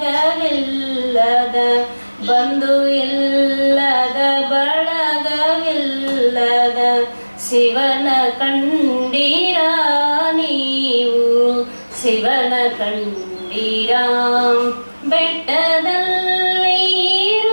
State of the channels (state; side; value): inverted; both; correlation -1.00